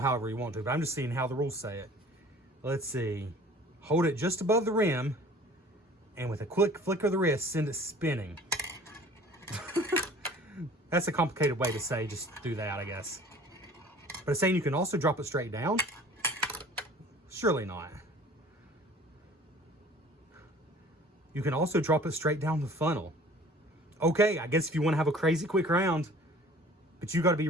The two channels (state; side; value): normal; both; correlation 0.48